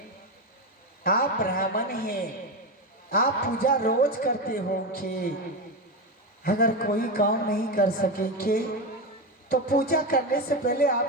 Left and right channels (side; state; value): both; normal; correlation 0.15